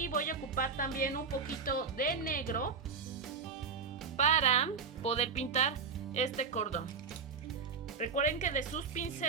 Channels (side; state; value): left; quieter; 5.3 dB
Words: voy a ocupar también un poquito de negro para poder pintar este cordón. Recuerden que de sus